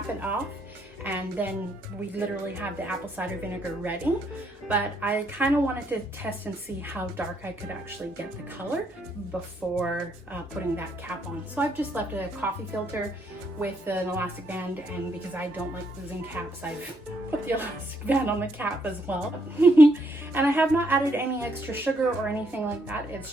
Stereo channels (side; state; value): both; normal; correlation 0.73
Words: it off, and then we literally have the apple cider vinegar ready. But I kind of wanted to test and see how dark I could actually get the color before putting that cap on. So I've just left a coffee filter with an elastic band, and because I don't like losing caps, I've put the elastic band on the cap as well. And I have not added any extra sugar or anything like that.